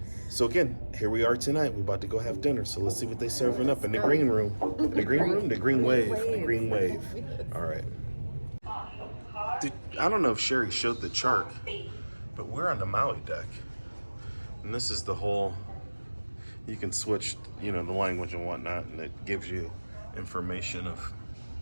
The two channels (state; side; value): inverted; both; correlation -1.00